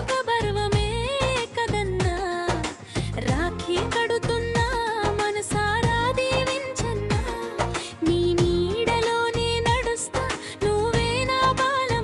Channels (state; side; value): identical; both; correlation 1.00